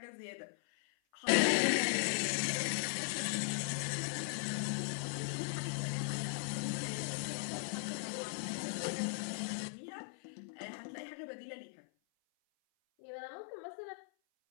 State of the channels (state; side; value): silent; right; 52 dB below the other